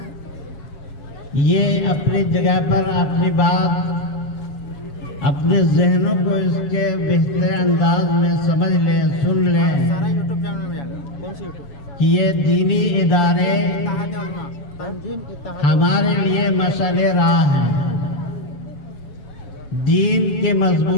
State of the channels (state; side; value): late; right; 7.2 ms